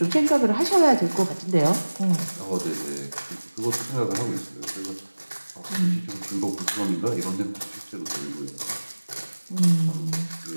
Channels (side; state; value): both; inverted; correlation -1.00